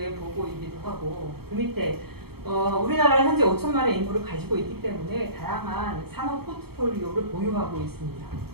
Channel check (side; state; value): left; late; 0.96 ms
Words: 보고이기도 하고 그 밑에 우리나라는 현재 5천만의 인구를 가지고 있기 때문에 다양한 산업 포트폴리오를 보유하고 있습니다.